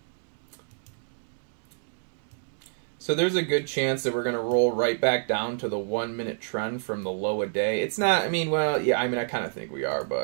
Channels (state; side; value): silent; left; 59 dB below the other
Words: So there's a good chance that we're going to roll right back down to the 1 minute trend from the low a day. It's not, I mean, well, yeah, I mean, I kind of think we are,